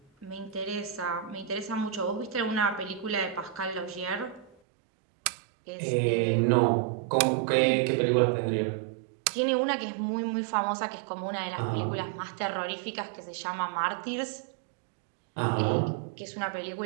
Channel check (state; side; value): drops out; left; at 4.5 s